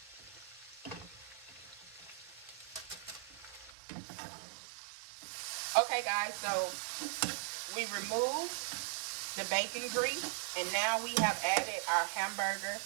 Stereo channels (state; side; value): drops out; left; at 3.7 s